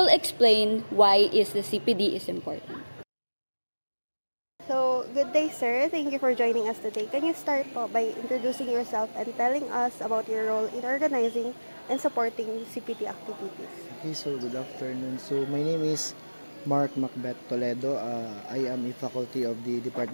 explain why the CPD is important. So, good day sir. Thank you for joining us today. Can you start po by introducing yourself and telling us about your role in organizing and supporting CPD activities? Okay, so good afternoon. So my name is Mark Macbeth Toledo. I am a faculty of the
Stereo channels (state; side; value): inverted; both; correlation -1.00